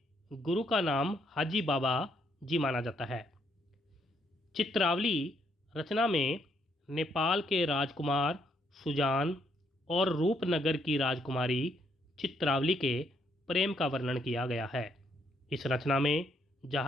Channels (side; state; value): both; normal; correlation 0.72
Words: गुरु का नाम हाजी बाबा जी माना जाता है। चित्रावली रचना में नेपाल के राजकुमार सुजान और रूपनगर की राजकुमारी चित्रावली के प्रेम का वर्णन किया गया है। इस रचना में